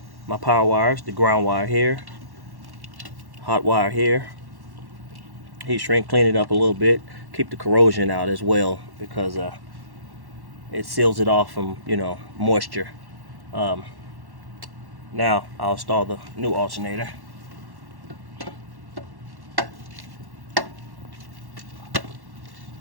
my power wires, the ground wire here, hot wire here. Heat shrink, clean it up a little bit, keep the corrosion out as well because it seals it off from moisture. Um, Now I'll install the new alternator.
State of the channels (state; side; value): late; left; 1.1 ms